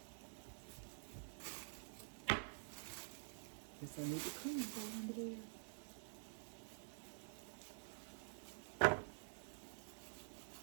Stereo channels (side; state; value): left; silent; digital silence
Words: Guess I need to clean that under there.